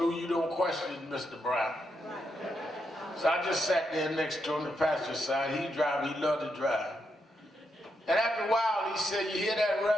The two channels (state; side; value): normal; both; correlation 0.82